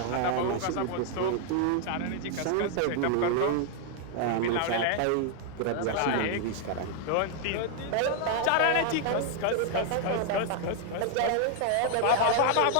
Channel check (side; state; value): both; different; correlation 0.00